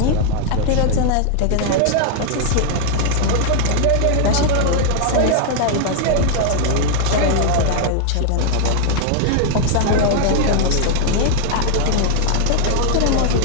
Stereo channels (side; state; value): both; different; correlation 0.00